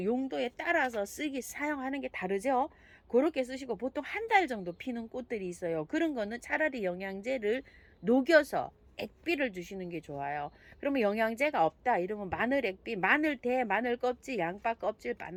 용도에 따라서 사용하는 게 다르죠. 그렇게 쓰시고, 보통 한 달 정도 피는 꽃들이 있어요. 그런 거는 차라리 영양제를 녹여서 액비를 주시는 게 좋아요. 그러면 영양제가 없다 이러면 마늘 액비, 마늘 대, 마늘 껍질, 양파 껍질,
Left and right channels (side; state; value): both; identical; correlation 1.00